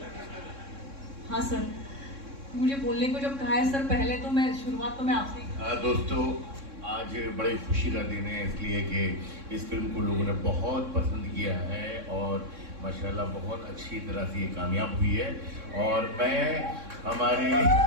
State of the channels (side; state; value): left; late; 3.6 ms